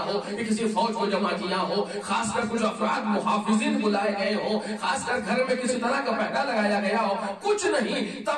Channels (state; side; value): identical; both; correlation 1.00